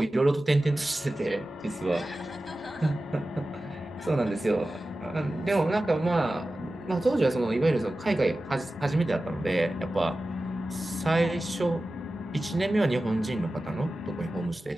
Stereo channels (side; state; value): both; normal; correlation 0.95